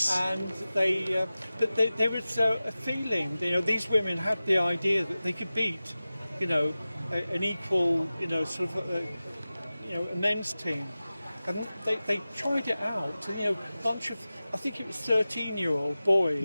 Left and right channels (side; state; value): both; inverted; correlation -0.96